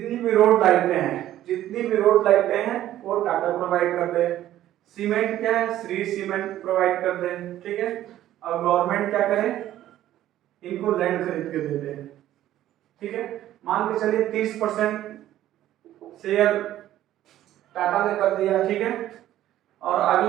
भी रोड लाइटें हैं, जितनी भी रोड लाइटें हैं वो टाटा प्रोवाइड कर दे। सीमेंट क्या है? श्री सीमेंट प्रोवाइड कर दे। ठीक है, और गवर्नमेंट क्या करे? इनको लैंड खरीद के दे दे। ठीक है, मान के चलिए 30% शेयर टाटा ने कर दिया। ठीक है, और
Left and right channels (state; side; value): quieter; left; 13.1 dB